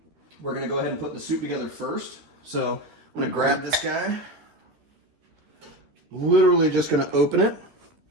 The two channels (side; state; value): left; late; 13 ms